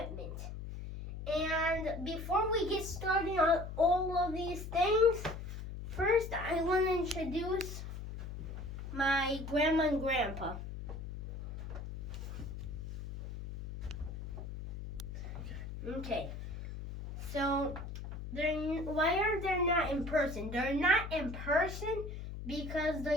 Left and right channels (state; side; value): noise; left; hum, 8 dB below the sound